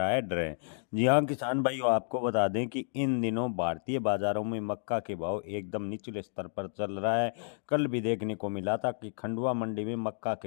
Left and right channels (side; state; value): right; silent; digital silence